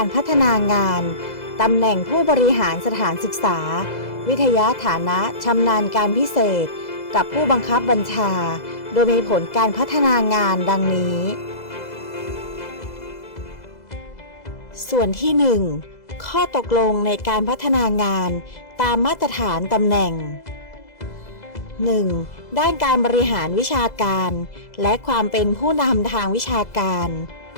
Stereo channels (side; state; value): right; late; 2.0 ms